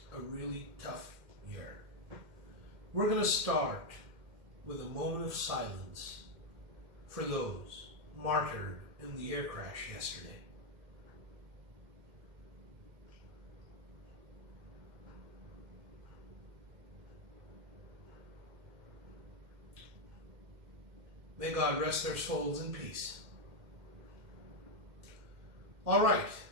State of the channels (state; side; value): late; left; 2.1 ms